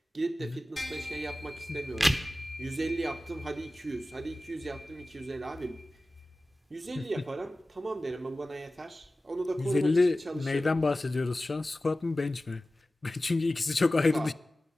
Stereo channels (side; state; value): both; normal; correlation 0.96